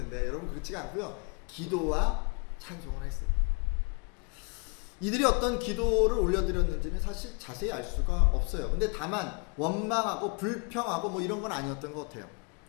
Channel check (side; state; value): right; quieter; 34.6 dB